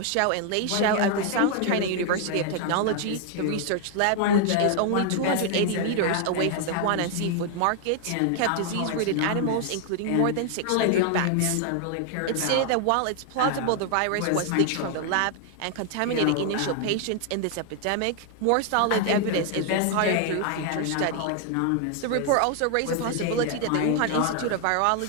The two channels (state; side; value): different; both; correlation 0.00